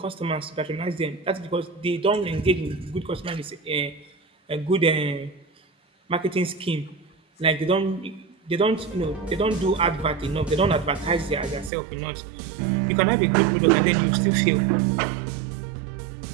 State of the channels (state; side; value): drops out; left; at 11.7 s